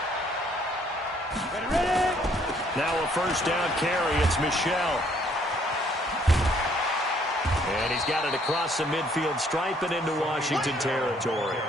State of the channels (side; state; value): both; normal; correlation 0.64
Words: Now a first down carry. It's Michel. And he's got it across the midfield stripe and into Washington territory.